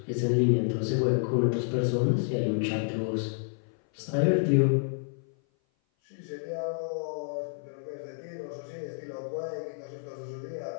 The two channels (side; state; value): right; silent; 56 dB below the other